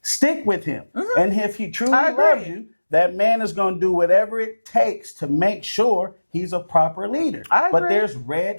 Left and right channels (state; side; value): inverted; both; correlation -1.00